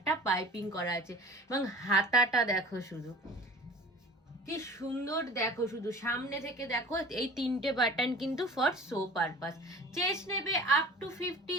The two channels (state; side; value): normal; both; correlation 0.43